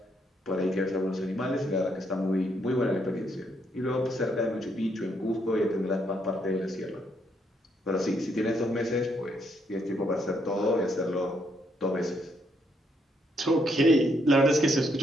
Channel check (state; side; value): normal; both; correlation 0.74